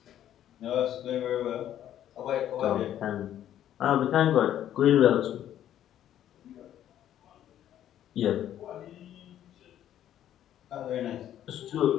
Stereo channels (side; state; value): right; quieter; 11.3 dB